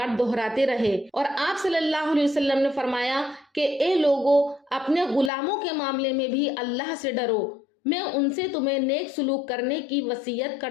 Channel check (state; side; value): drops out; right; at 5.3 s